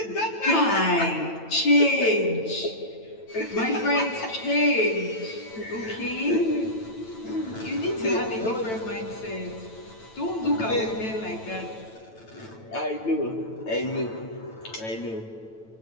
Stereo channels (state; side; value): late; right; 9.0 ms